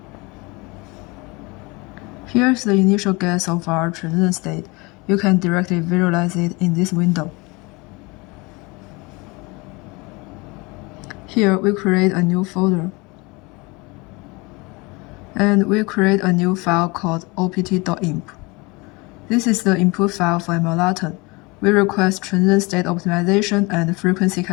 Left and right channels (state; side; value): quieter; right; 25.9 dB